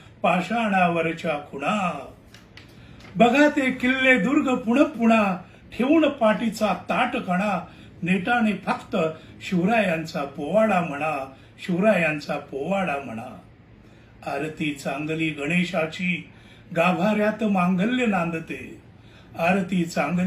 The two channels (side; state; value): both; identical; correlation 1.00